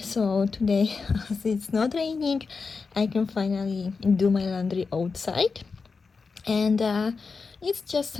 today, as it's not raining, I can finally do my laundry outside. And it's just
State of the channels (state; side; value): quieter; right; 4.7 dB